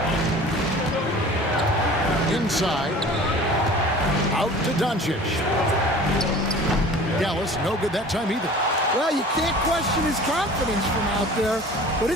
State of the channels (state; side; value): normal; both; correlation 0.43